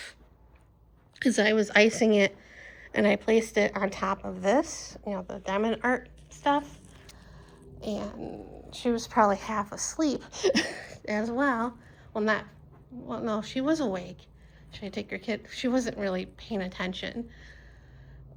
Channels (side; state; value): both; identical; correlation 1.00